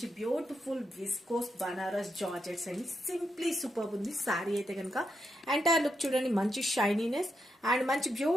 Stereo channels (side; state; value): both; normal; correlation 0.83